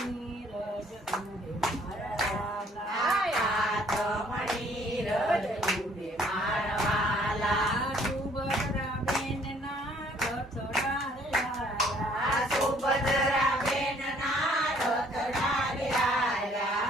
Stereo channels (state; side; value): normal; both; correlation 0.61